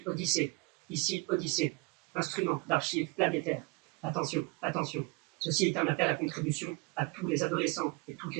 Odyssée, ici Odyssée, instrument d'archives planétaires. Attention, attention, ceci est un appel à contribution à tous les adolescents et toutes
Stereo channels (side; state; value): left; quieter; 26.9 dB